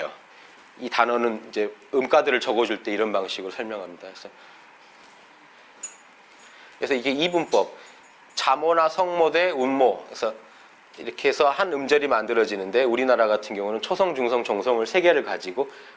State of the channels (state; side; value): identical; both; correlation 1.00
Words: 이 단어는 이제 음가들을 적어줄 때 이런 방식으로 설명합니다. 그래서 이게 이분법, 자모나 성모 대 운모. 그래서 이렇게 해서 한 음절이 만들어지는데 우리나라 같은 경우는 초성, 중성, 종성을 세 개를 가지고